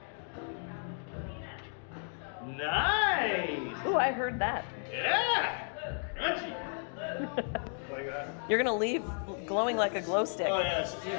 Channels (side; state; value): right; silent; 55 dB below the other